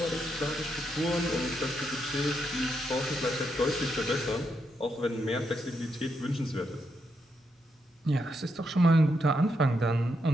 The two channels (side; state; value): both; normal; correlation 0.81